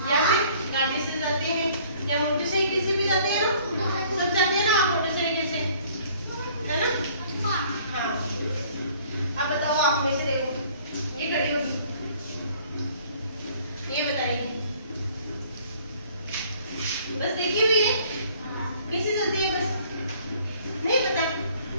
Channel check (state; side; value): inverted; both; correlation -0.56